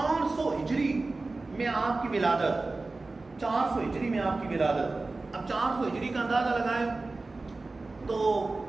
ہجری میں آپ کی ولادت، 400 ہجری میں آپ کی ولادت، اب 400 ہجری کا اندازہ لگائیں تو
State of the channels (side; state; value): left; quieter; 3.4 dB